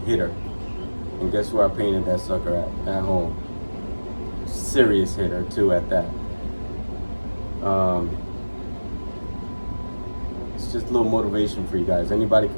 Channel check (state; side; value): inverted; both; correlation -1.00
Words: And guess where I painted that sucker at home. Serious hitter too at that. It's just a little motivation for you guys. Anybody